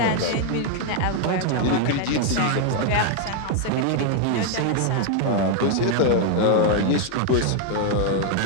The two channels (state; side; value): different; both; correlation 0.00